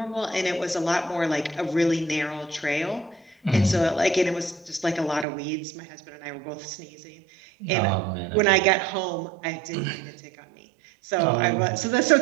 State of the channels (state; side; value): drops out; left; at 5.2 s